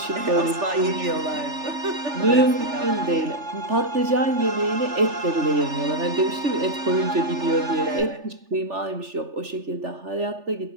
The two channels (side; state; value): left; late; 3.4 ms